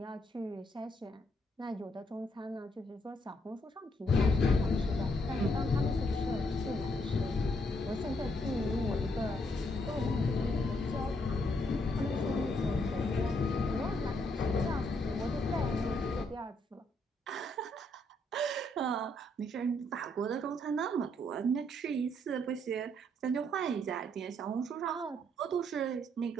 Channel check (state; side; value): normal; both; correlation 0.73